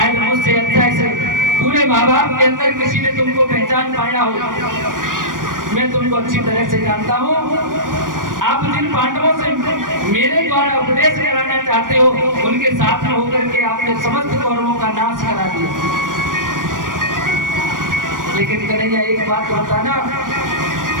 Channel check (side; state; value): left; late; 0.90 ms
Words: मुझसे अच्छा ऐसे पूरे माँ बाप के अंदर किसी ने तुमको पहचान पाया हो, मैं तुमको अच्छी तरह से जानता हूँ। आप जिन पांडवों से मेरे द्वारा उपदेश कराना चाहते हो उनके साथ में होकर के आपने समस्त कौरवों का नाश करा दिया। लेकिन कन्हैया एक बात बताना,